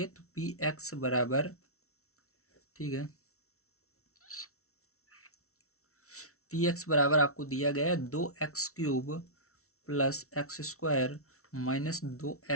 तो पी एक्स बराबर, ठीक है, पी एक्स बराबर आपको दिया गया है 2x³ प्लस x²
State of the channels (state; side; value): late; right; 0.63 ms